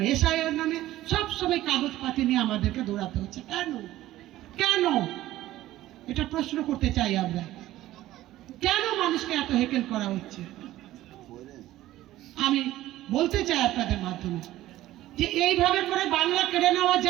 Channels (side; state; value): left; quieter; 15.1 dB